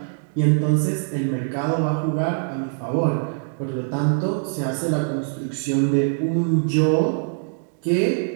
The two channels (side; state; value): left; silent; digital silence